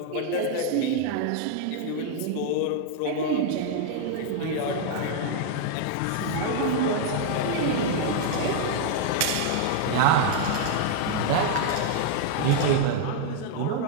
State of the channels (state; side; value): different; both; correlation 0.00